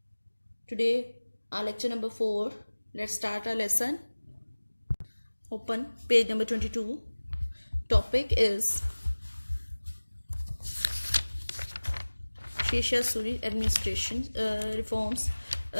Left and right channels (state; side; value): inverted; both; correlation -1.00